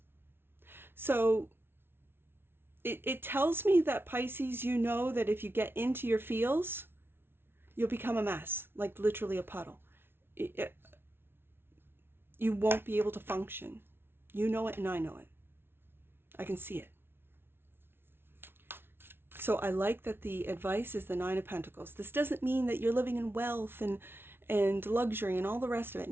So it tells me that, Pisces, you know that if you get into your feels, you'll become a mess, like literally a puddle. You won't be able to function. You know it and I know it. I can see it. So I like that the advice is the Nine of Pentacles. This doesn't mean that you're living in wealth and luxury and all the rest of it.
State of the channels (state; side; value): late; left; 0.11 ms